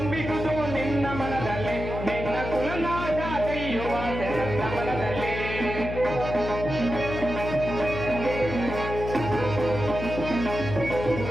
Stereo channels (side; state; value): left; noise; hum, 6 dB below the sound